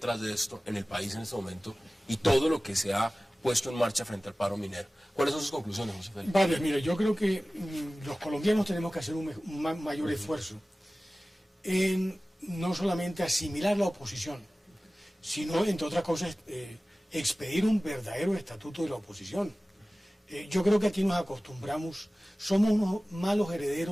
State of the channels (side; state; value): both; normal; correlation 0.97